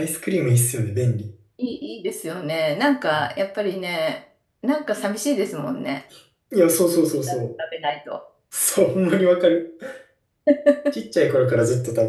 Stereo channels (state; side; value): identical; both; correlation 1.00